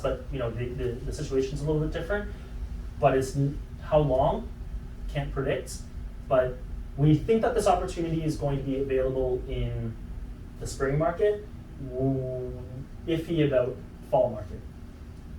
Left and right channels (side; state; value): both; identical; correlation 1.00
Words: you know, the situation's a little bit different. But it's, how long, can't predict, but we think that this opportunity is going to be available in the spring market, iffy about fall market,